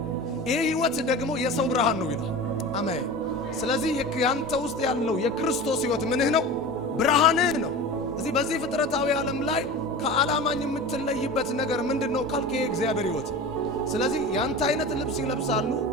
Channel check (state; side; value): normal; both; correlation 0.32